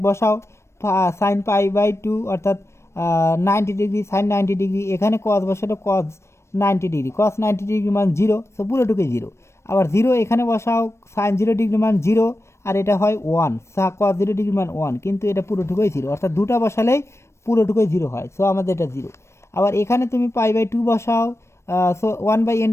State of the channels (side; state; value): right; late; 0.13 ms